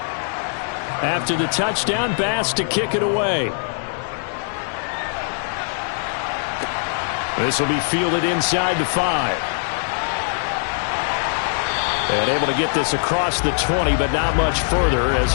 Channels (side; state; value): right; silent; digital silence